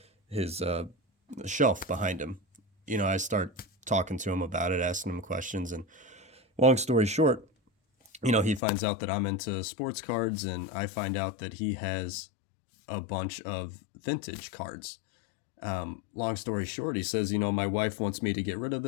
shelf behind him. I start talking to him about it, asking him questions, and long story short, he finds out that I'm into sports cards, and I find out that he has a bunch of vintage cards. Long story short, he says, my wife wants me to get rid of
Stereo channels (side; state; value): right; drops out; at 8.6 s